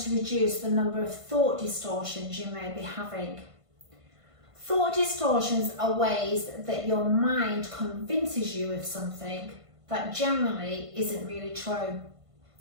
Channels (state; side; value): late; left; 1.5 ms